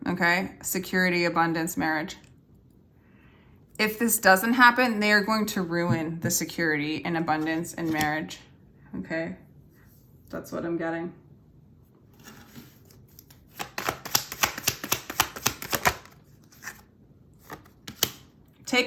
okay? Security, abundance, marriage. If this doesn't happen, they are going to ruin the security and abundance and marriage, okay? That's what I'm getting. Take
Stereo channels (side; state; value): both; identical; correlation 1.00